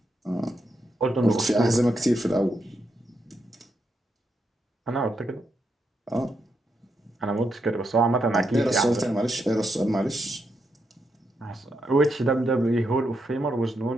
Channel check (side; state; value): both; normal; correlation 0.82